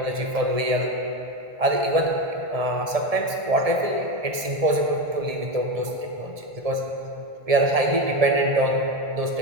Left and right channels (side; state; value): left; late; 1.7 ms